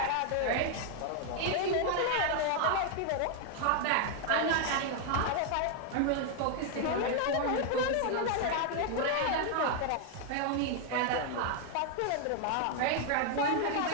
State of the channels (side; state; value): both; different; correlation 0.00